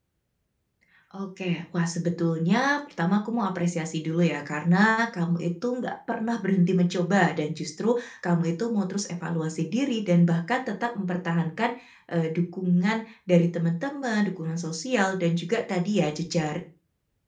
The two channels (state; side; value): identical; both; correlation 1.00